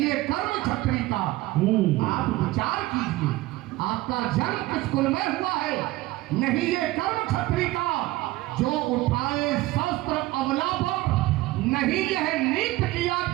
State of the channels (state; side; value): quieter; left; 18.4 dB